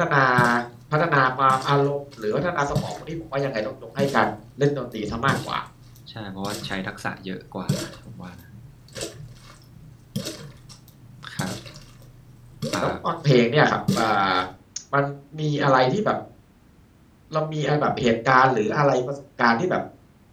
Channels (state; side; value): identical; both; correlation 1.00